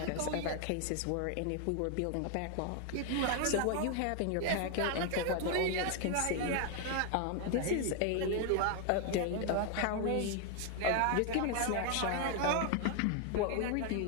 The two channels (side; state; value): both; different; correlation 0.01